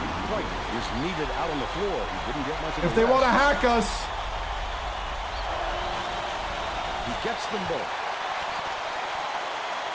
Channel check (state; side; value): identical; both; correlation 1.00